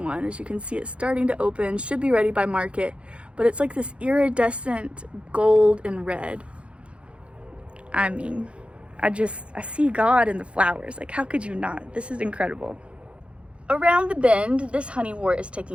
As you can see, it's starting to open, should be ready by market, but it's like this iridescent gold and red. I mean, I see God in the flowers. Like, how could you not? This is incredible. Around the bend, this honeywort is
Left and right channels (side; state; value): left; late; 0.060 ms